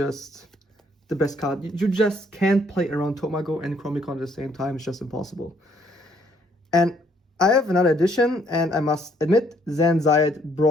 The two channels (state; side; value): normal; both; correlation 0.66